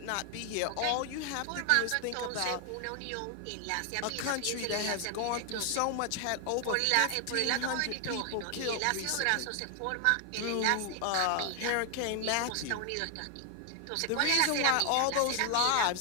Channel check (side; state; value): both; different; correlation 0.00